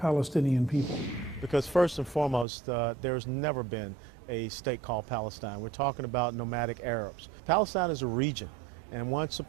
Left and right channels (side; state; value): left; drops out; at 2.5 s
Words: people. Because first and foremost, there's never been a state called Palestine. We're talking about nomadic Arabs. Palestine is a region. And once